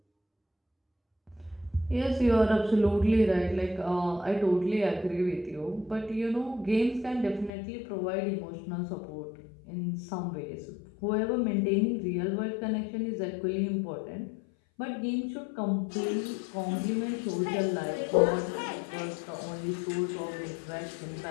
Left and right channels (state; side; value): drops out; right; at 7.5 s